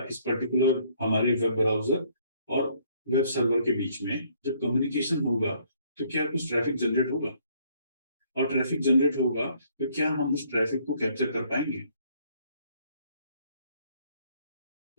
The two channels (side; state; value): both; inverted; correlation -0.65